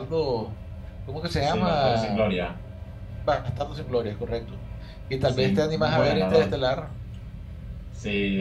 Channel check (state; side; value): identical; both; correlation 1.00